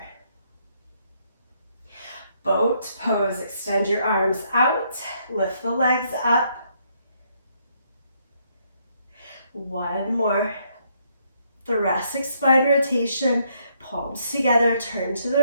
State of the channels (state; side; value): inverted; both; correlation -0.71